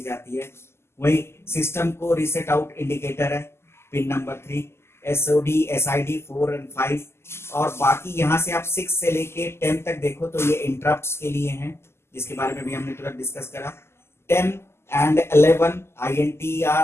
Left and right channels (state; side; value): late; right; 0.12 ms